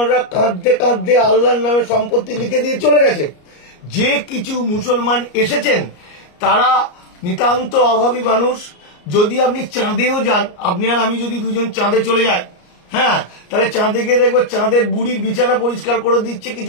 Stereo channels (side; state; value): right; late; 34 ms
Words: কাঁদতে কাঁদতে আল্লাহর নামে সম্পত্তি লিখে দিয়ে চলে গেছে। যে কিছু মুসলমান এসেছেন তারা নিতান্ত অভাবী মানুষ। যদি আপনি চাঁদেও যান, আপনি আর আমি যদি দুজন চাঁদে চলে যাই, হ্যাঁ, তাহলে চাঁদে গিয়ে দেখবো চাঁদের বুড়ির বিছানা পরিষ্কার করে দিচ্ছে